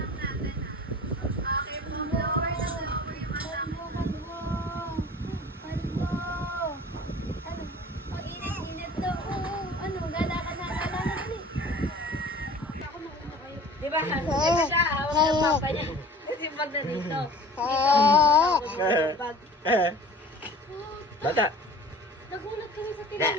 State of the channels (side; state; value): both; normal; correlation 0.44